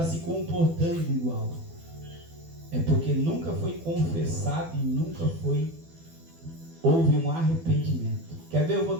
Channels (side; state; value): left; late; 12 ms